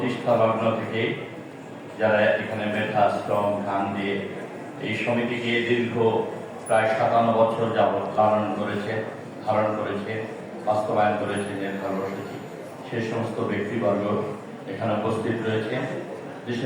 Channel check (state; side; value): identical; both; correlation 1.00